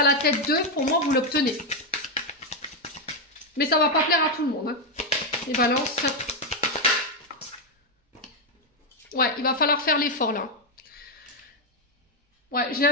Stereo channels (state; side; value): normal; both; correlation 0.03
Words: la tête d'eux, pour moi, vous l'obtenez. Mais ça ne va pas plaire à tout le monde. Hein. Les balances. Ouais, il va falloir faire l'effort là. Ouais, j'ai